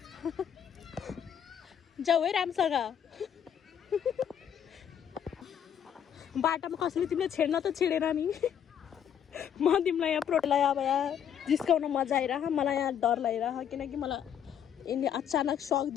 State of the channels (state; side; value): quieter; right; 8.9 dB